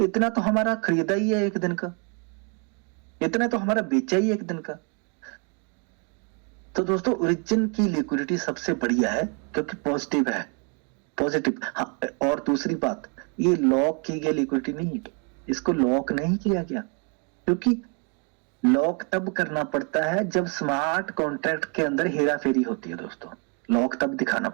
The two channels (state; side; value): quieter; left; 36.2 dB